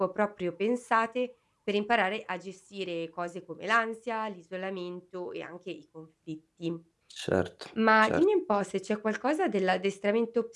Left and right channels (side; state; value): both; identical; correlation 1.00